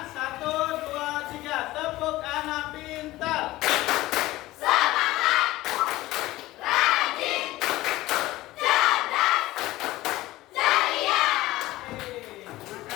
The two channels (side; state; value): right; quieter; 17.6 dB